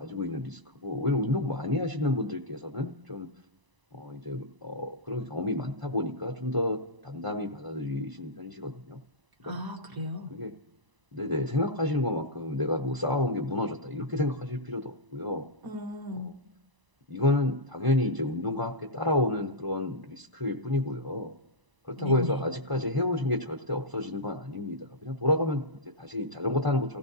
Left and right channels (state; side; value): late; left; 1.0 ms